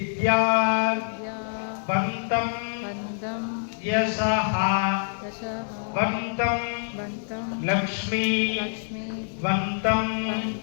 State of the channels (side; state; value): right; silent; digital silence